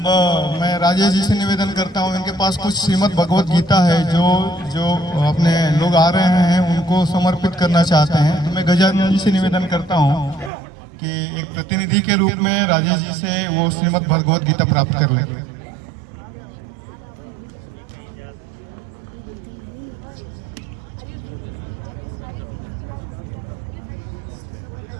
मैं राजेश जी से निवेदन करता हूँ, इनके पास कुछ श्रीमद् भगवत गीता है जो अपने लोग आ रहे हैं उनको समर्पित करना चाहते हैं। तो मैं गजानन जी से निवेदन करता हूँ कि एक प्रतिनिधि के रूप में राजेश जी से वो श्रीमद् भगवत गीता प्राप्त कर लें।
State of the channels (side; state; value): left; drops out; at 10.5 s